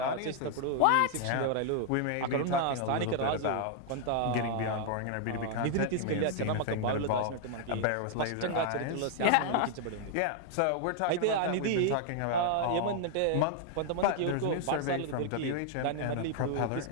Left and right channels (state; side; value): different; both; correlation 0.00